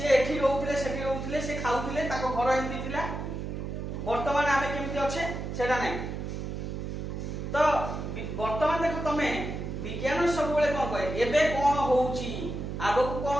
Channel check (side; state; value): right; noise; hum, 5 dB below the sound